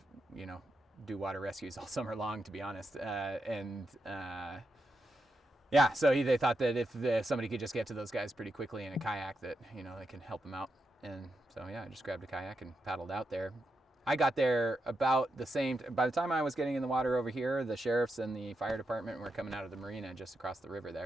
you know, do water rescues all summer long, to be honest, yeah, so they thought that if somebody could just get to those guys pretty quickly in a kayak, that, you know, they can help them out. And so, yeah, I just grabbed a kayak and paddled out there. I got there about the same, by the time I was getting in the water over here, the sheriffs and the fire department were coming out of the marina just across the river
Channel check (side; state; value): both; normal; correlation 0.85